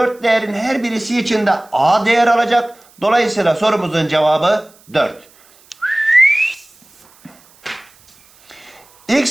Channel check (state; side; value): noise; right; hiss, 29 dB below the sound